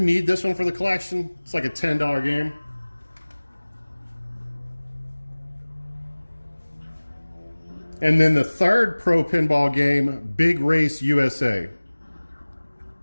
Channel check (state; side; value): inverted; both; correlation -1.00